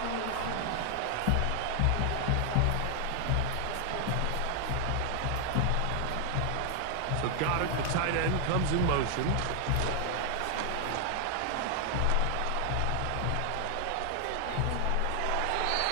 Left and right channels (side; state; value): both; different; correlation 0.00